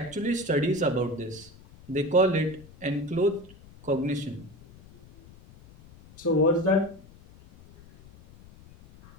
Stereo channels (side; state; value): left; noise; rumble, 23 dB below the sound